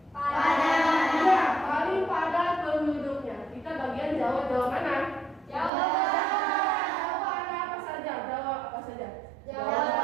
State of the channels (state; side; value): drops out; left; at 5.7 s